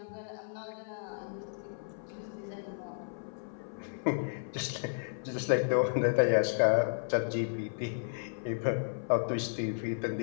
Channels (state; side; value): silent; right; 56 dB below the other